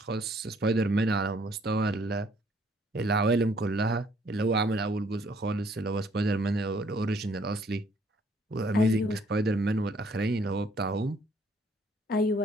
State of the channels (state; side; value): normal; both; correlation 0.63